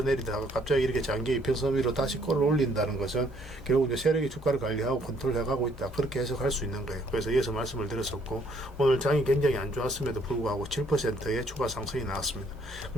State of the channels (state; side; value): normal; both; correlation 0.65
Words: 갑자기 이렇게 장기 이평선 위로 다시 끌어올린다는 것은 결국 이제 세력이 주가를 관리하고 컨트롤해가고 있다. 그렇게 해석할 수 있는 거예요. 그래서 이어서 말씀을 드렸었고 오늘 장이 굉장히 안 좋았음에도 불구하고 7%의 추가 상승이 나왔습니다.